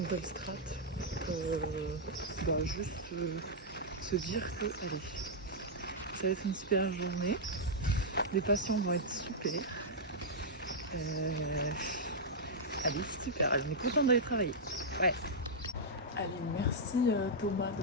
strat pour juste se dire que, allez, ça va être une super journée. Les patients vont être super. Allez, super. On est content d'aller travailler. Ouais. Allez, merci Thomas de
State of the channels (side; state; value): both; normal; correlation -0.07